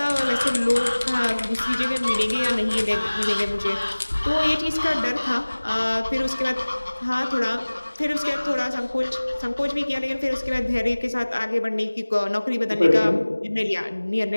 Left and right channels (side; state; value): both; inverted; correlation -1.00